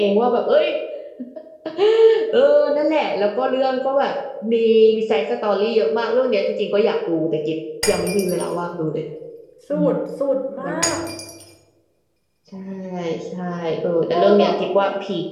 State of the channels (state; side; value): identical; both; correlation 1.00